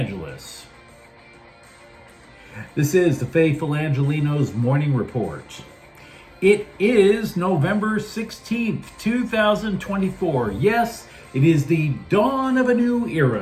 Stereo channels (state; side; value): identical; both; correlation 1.00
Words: This is the faithful Angelenos Morning Report. It is November 16th, 2024. Yes, it is the dawn of a new